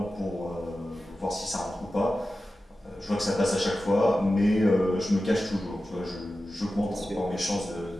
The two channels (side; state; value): both; normal; correlation 0.94